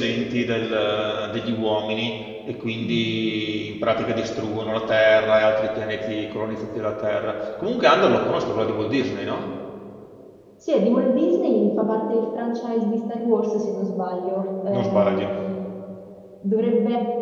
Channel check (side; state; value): both; identical; correlation 1.00